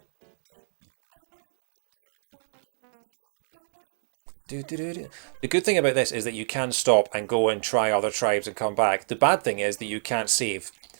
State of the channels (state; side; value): silent; left; digital silence